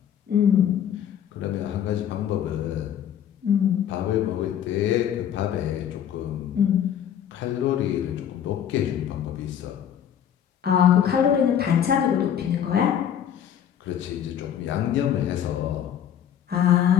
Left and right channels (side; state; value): right; quieter; 9.5 dB